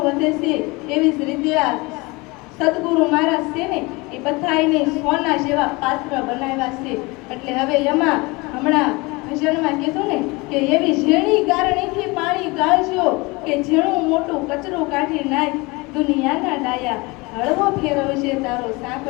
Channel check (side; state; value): right; quieter; 24.9 dB